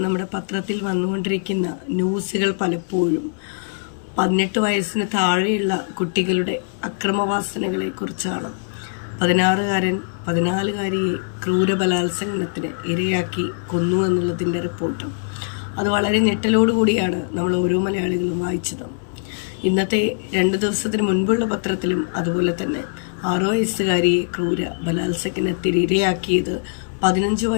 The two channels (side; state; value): right; silent; 64 dB below the other